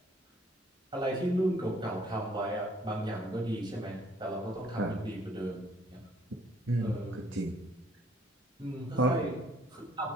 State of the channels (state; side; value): normal; both; correlation 0.62